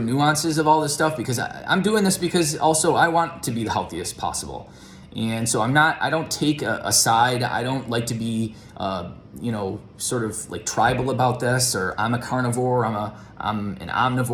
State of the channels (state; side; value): identical; both; correlation 1.00